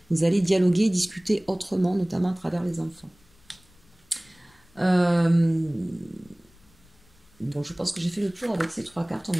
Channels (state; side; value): noise; left; rumble, 30 dB below the sound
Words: dialoguer, discuter autrement, notamment à travers les enfants. Euh, Bon, je pense que j'ai fait le tour avec ces 3 cartes, on